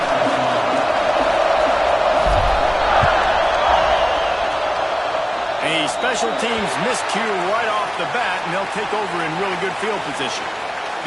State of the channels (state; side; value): identical; both; correlation 1.00